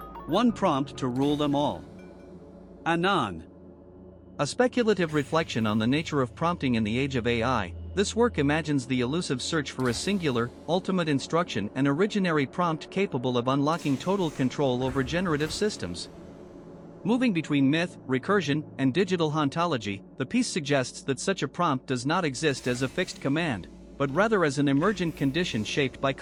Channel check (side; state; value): both; identical; correlation 1.00